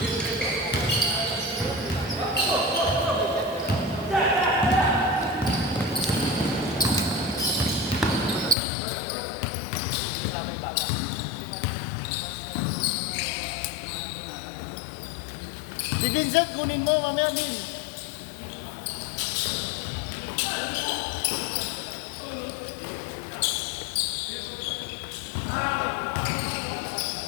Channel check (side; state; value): right; drops out; at 8.6 s